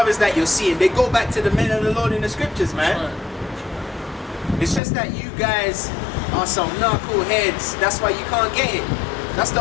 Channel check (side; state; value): right; drops out; at 4.8 s